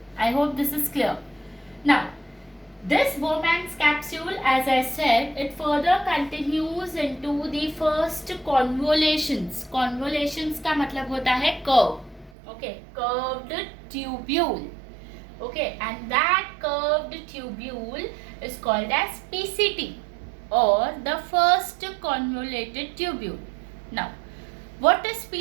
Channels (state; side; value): drops out; left; at 12.3 s